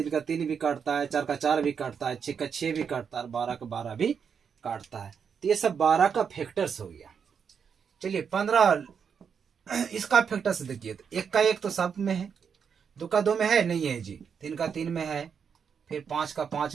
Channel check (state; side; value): quieter; left; 6.8 dB